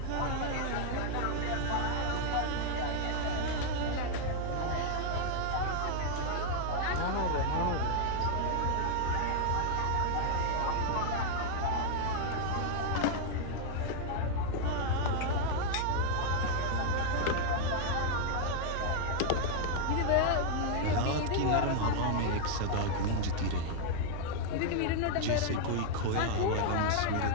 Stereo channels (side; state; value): both; different; correlation 0.00